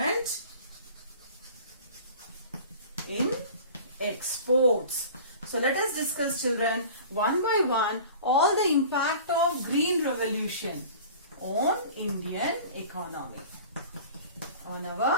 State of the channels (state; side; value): inverted; both; correlation -0.42